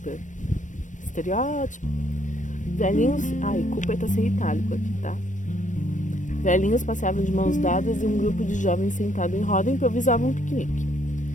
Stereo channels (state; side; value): late; right; 0.37 ms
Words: Estereótipo. Velhinhos... Ai, Cooper tá sem itálico aqui, tá? Velhinhos passeavam de mãos dadas e um grupo de jovens sentado em roda improvisavam um piquenique.